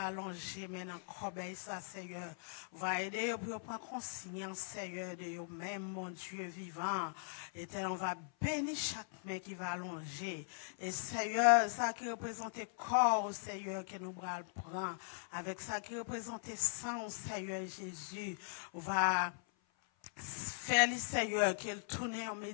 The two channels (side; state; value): right; silent; 51 dB below the other